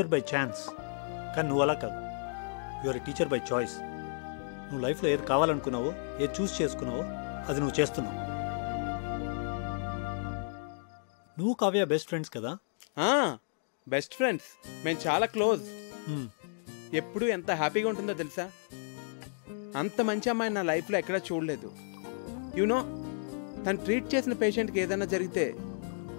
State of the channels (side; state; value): right; silent; digital silence